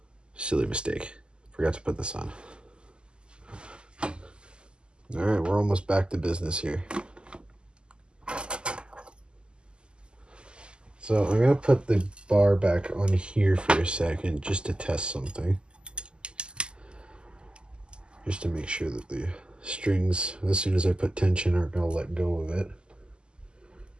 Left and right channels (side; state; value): left; late; 0.049 ms